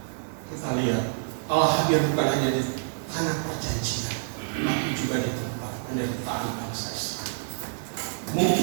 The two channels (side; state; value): left; silent; 57 dB below the other